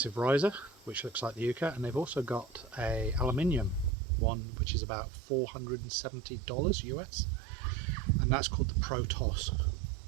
riser, which looks like the Yuka, and they've also got a aluminium one, which is about $470 US, and that's called the Pro Toss.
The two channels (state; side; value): drops out; left; at 4.0 s